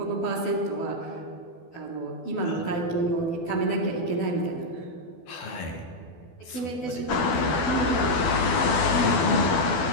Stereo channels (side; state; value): right; late; 12 ms